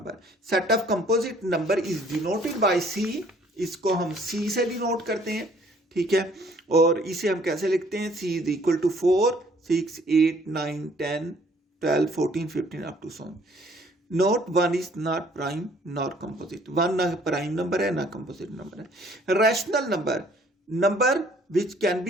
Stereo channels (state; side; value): normal; both; correlation 0.60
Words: Set of composite number is denoted by C. इसको हम C से डिनोट करते हैं, ठीक है। और इसे हम कैसे लिखते हैं? C is equal to 4, 6, 8, 9, 10, 12, 14, 15 up to so on. Note, 1 is not prime nor composite. 1 ना प्राइम नंबर है ना कंपोजिट नंबर है। Rational number, number which can